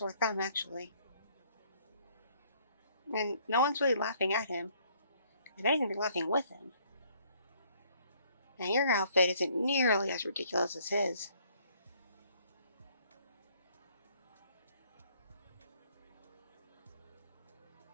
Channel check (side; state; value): both; inverted; correlation -0.63